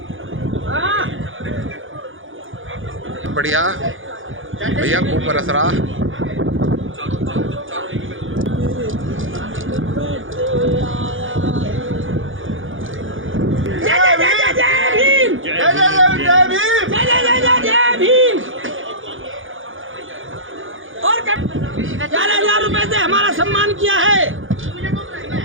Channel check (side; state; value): left; late; 0.58 ms